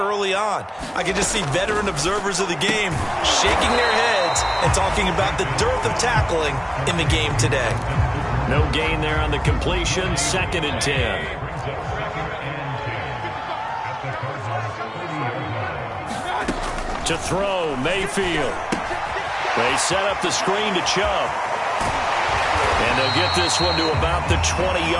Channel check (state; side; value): identical; both; correlation 1.00